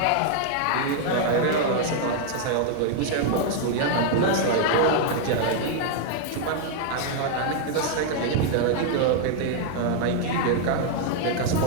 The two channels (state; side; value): different; both; correlation 0.00